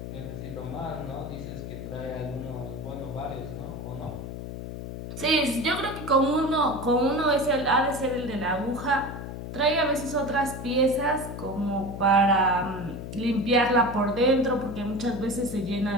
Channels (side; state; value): left; noise; hum, 8 dB below the sound